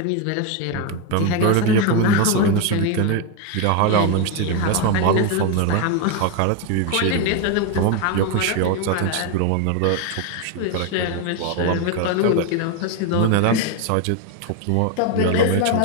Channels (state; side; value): different; both; correlation 0.02